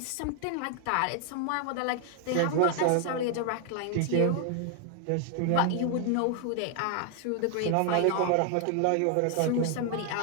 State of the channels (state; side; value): different; both; correlation 0.00